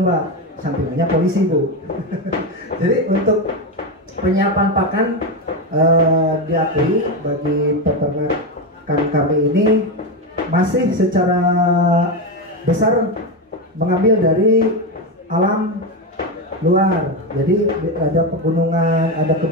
sampingannya polisi Bu. Jadi untuk penyiapan pakan diakui bagi peternakan kami ini masih secara besar mengambil dari alam luar. Jadi ada pegunungan, ada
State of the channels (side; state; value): both; normal; correlation 0.12